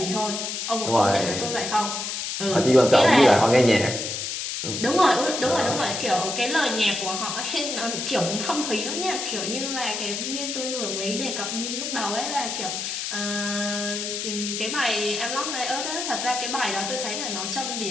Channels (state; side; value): noise; left; hiss, 4 dB below the sound